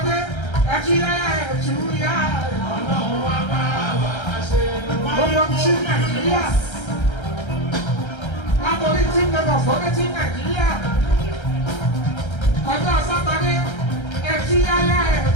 ẹ̀kíyáyá ẹ̀túyá. Gbogbo sí Nàìjíríà, látọ̀rí tí Lagos fọ́dé sí Nàìjíríà. ọjọ́ sátani ẹtí yáyá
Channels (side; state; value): right; late; 1.3 ms